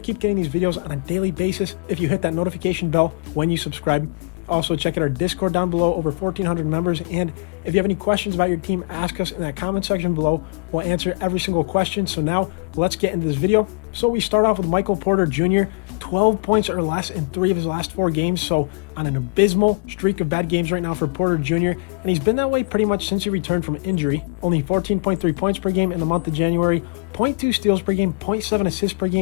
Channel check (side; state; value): right; quieter; 32.0 dB